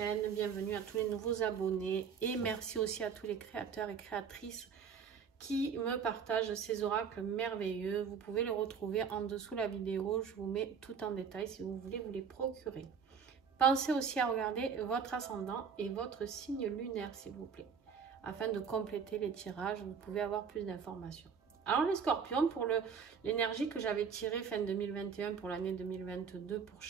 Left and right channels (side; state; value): left; quieter; 6.5 dB